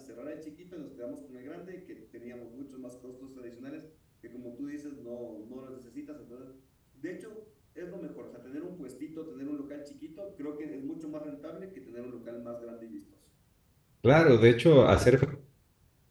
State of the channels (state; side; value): identical; both; correlation 1.00